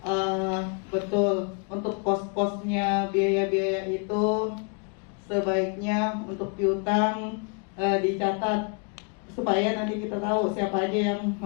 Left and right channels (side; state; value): right; quieter; 37.0 dB